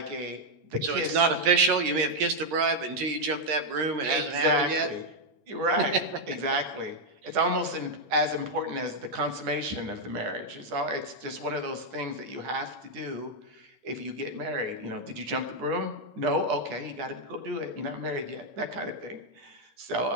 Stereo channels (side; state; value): left; late; 8.8 ms